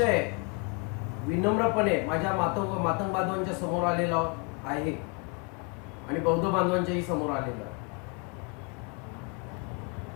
विनम्रपणे माझ्या मातंग बांधवांच्या समोर आलेलो आहे आणि बौद्ध बांधवांच्याही समोर आलेलो आहे.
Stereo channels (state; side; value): quieter; right; 32.8 dB